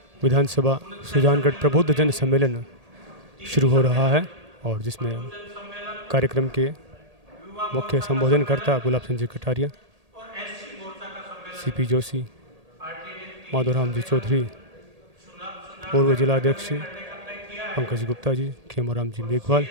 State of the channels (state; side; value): late; left; 1.8 ms